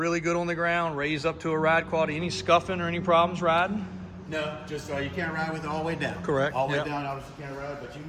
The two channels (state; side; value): identical; both; correlation 1.00